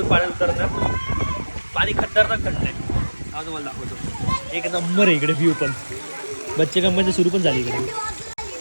पाण्यात उतरणार पाणी खतरनाक थंड आहे हा तुम्हाला दाखवतो एक नंबर आहे इकडे व्ह्यू पण बच्चे कंपनी सुरू पण झाली इकडे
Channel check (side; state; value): both; inverted; correlation -1.00